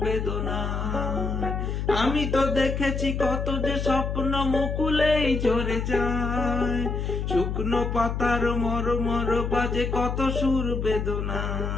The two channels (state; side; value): noise; left; hum, 2 dB below the sound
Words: বেদনায়। আমি তো দেখেছি কত যে স্বপ্ন মুকুলেই ঝরে যায়। শুকনো পাতার মরমর বাজে কত সুর